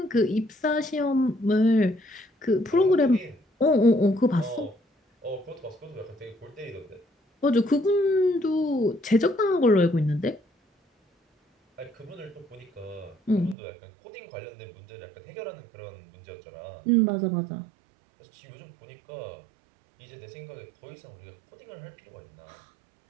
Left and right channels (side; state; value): left; drops out; at 13.6 s